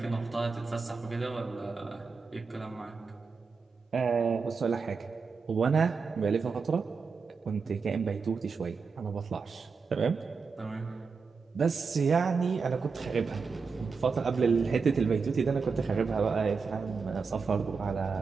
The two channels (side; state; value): left; quieter; 5.0 dB